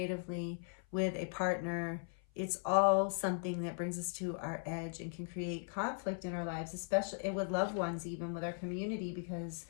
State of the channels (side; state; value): right; silent; 52 dB below the other